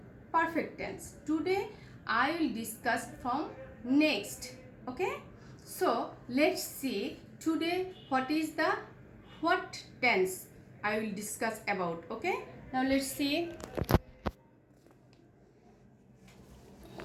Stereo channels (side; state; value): both; identical; correlation 1.00